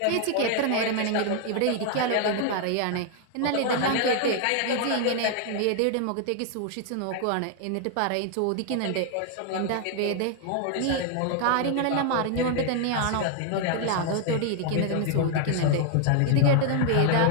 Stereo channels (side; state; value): both; different; correlation 0.00